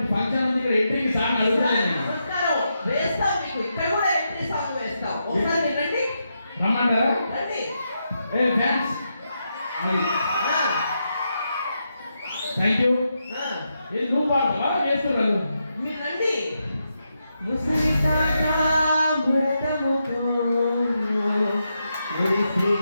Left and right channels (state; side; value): inverted; both; correlation -0.84